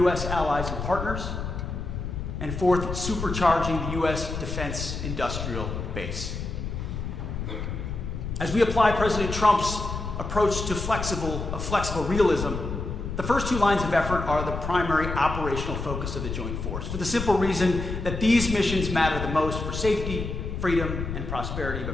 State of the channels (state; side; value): noise; left; rumble, 5 dB below the sound